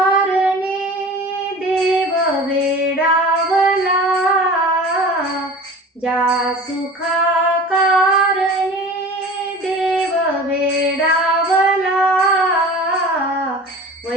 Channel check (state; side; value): normal; both; correlation 0.39